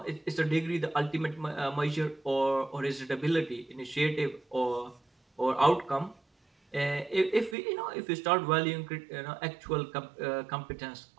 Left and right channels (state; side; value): drops out; left; at 7.6 s